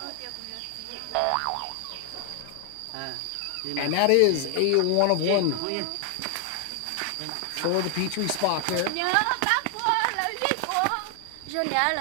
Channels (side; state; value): both; different; correlation 0.00